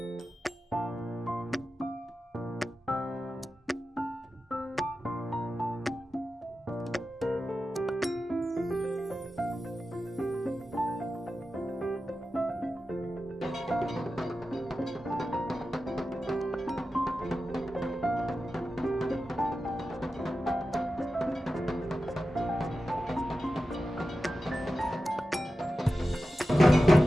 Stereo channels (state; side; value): normal; both; correlation 0.92